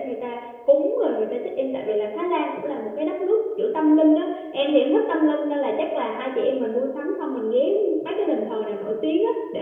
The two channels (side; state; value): both; identical; correlation 1.00